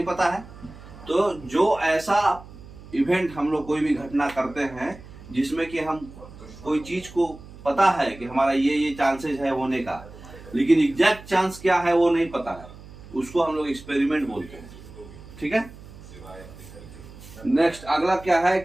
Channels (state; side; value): noise; right; hum, 18 dB below the sound